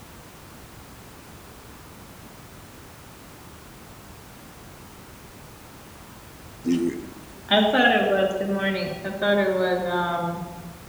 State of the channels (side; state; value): both; identical; correlation 1.00